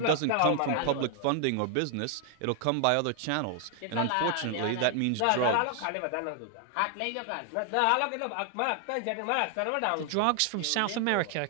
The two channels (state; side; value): different; both; correlation 0.00